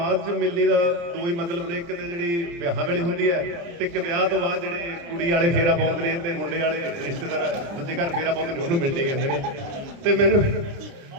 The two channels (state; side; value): late; left; 29 ms